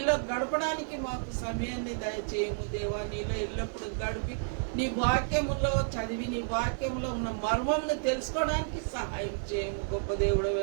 గడపడానికి మాకు సమయాన్ని దయచేయము దేవా. నీలో ఎల్లప్పుడూ గడిపి నీ వాక్యములో చదివి నీ వాక్యంలో ఉన్న మర్మమును తెలుసుకోవడానికి సహాయం చేయము. గొప్ప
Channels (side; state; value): left; silent; 57 dB below the other